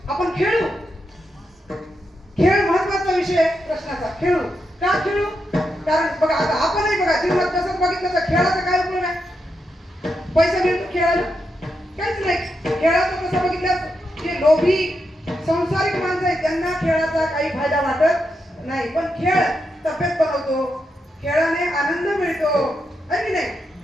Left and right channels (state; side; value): normal; both; correlation 0.84